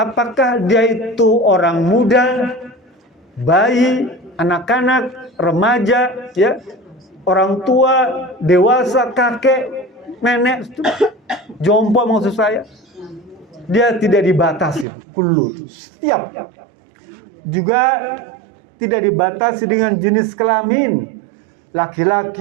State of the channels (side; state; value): left; drops out; at 14.9 s